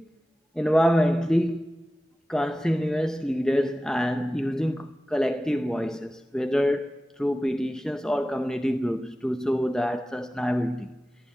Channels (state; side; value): normal; both; correlation 0.96